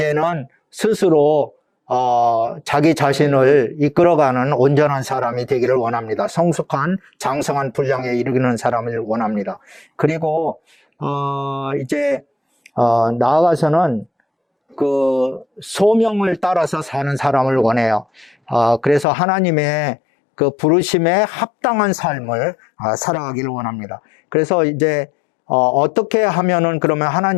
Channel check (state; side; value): drops out; right; at 19.1 s